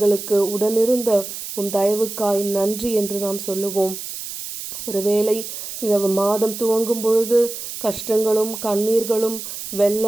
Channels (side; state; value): right; noise; hiss, 8 dB below the sound